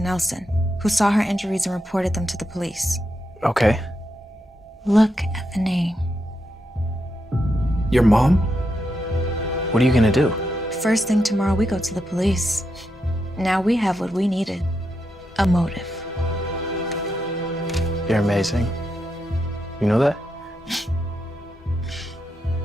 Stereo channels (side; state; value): both; normal; correlation 0.84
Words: Nelson, who saw her injuries and reported them to the police. Okay. Look at the name. Your mom? What are you gonna do? First thing tomorrow, we go to the police. Now we have what we needed. A motive. You're amazing. You know that?